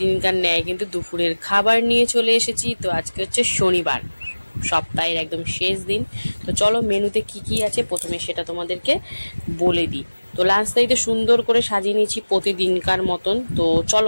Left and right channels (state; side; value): inverted; both; correlation -1.00